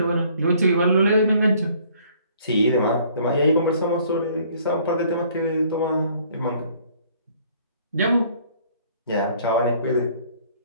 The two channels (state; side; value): inverted; both; correlation -0.59